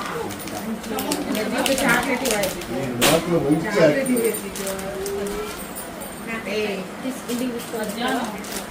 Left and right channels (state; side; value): identical; both; correlation 1.00